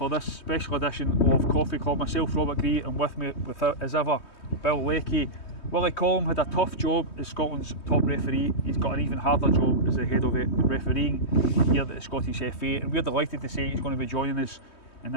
this special edition of Coffee Club. Myself, Robert Grieve, and with me, as ever, Bill Leckie. Willie Collum had a tough job as Scotland's top referee. He's got an even harder job as the head of refereeing here at the Scottish FA, and we're delighted to say he's going to be joining us in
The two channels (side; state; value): right; late; 3.2 ms